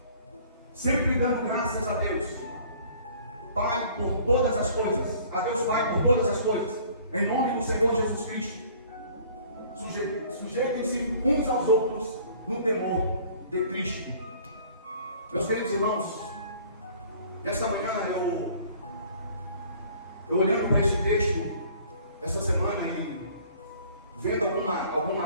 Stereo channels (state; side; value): inverted; both; correlation -0.52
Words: sempre dando graças a Deus Pai por todas as coisas, a Deus Pai por todas as coisas, em nome do Senhor Jesus Cristo. Sujeitem-se uns aos outros no temor de Cristo. Meus queridos irmãos, nesta manhã eu olhando para esse texto esta semana e vendo